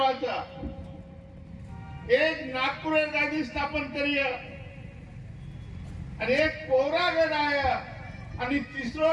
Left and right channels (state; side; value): identical; both; correlation 1.00